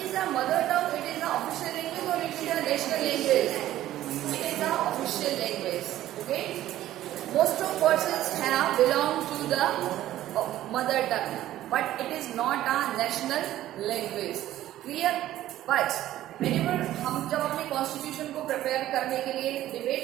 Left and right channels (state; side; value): quieter; left; 13.7 dB